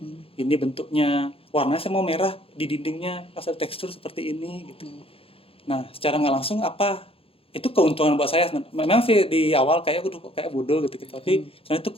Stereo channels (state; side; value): late; right; 0.27 ms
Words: Ini bentuknya, warnanya saya mau merah di dindingnya, asal tekstur seperti ini gitu. Nah, secara nggak langsung itu keuntungan buat saya. Memang sih di awal kayak bodoh gitu, tapi sebenarnya itu